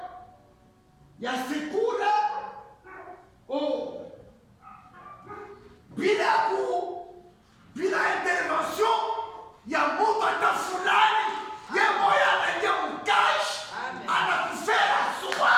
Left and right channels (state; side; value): identical; both; correlation 1.00